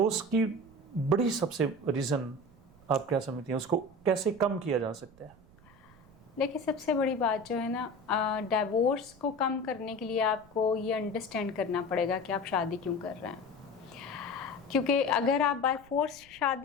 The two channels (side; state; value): right; noise; rumble, 25 dB below the sound